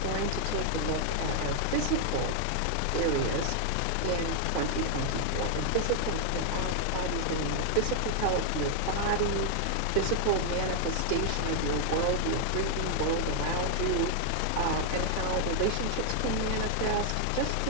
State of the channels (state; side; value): different; both; correlation 0.00